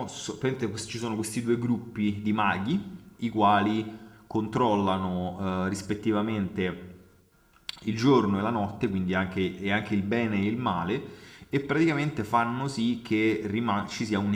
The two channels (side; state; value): both; identical; correlation 1.00